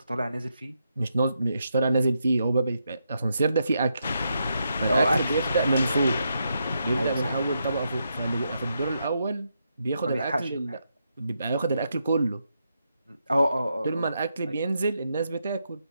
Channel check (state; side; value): inverted; both; correlation -0.82